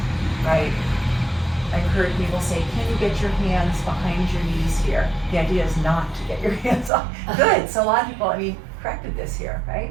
right? I've heard people say, can you get your hands behind your knees here? The idea is not to get your hands off. Good, so a lot of people, corrected this here,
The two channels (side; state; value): left; drops out; at 6.9 s